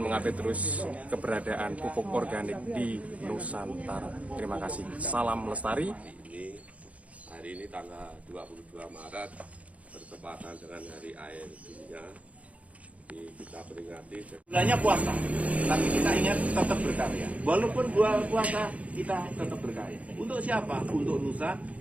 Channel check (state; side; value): late; left; 0.066 ms